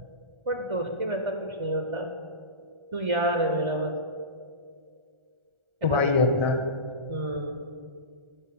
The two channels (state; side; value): late; left; 1.4 ms